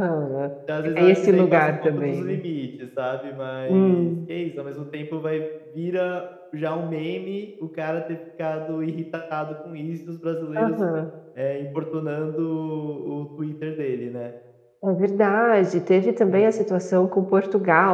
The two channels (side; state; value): both; identical; correlation 1.00